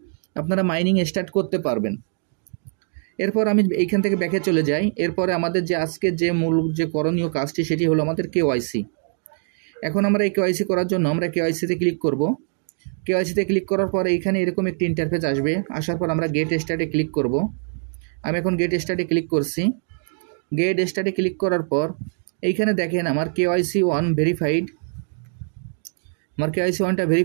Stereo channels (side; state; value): left; silent; 57 dB below the other